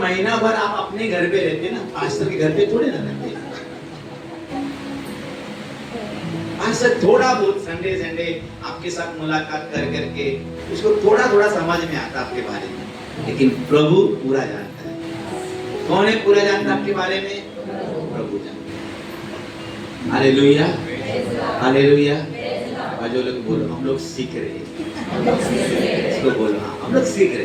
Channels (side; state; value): both; identical; correlation 1.00